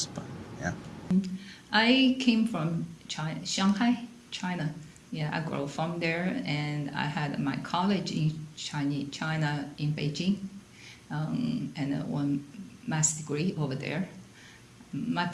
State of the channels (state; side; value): identical; both; correlation 1.00